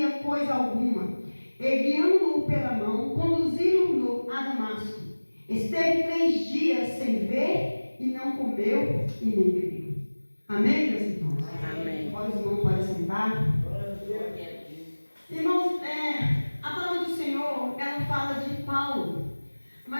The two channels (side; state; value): both; inverted; correlation -1.00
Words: coisa alguma. E guiando-o pela mão, conduziram-no a Damasco. Esteve 3 dias sem ver, e não comeu e nem bebeu. Amém, meus irmãos? Amém. Agora os irmãos podem sentar. Irmãos, a palavra do Senhor, ela fala de Paulo.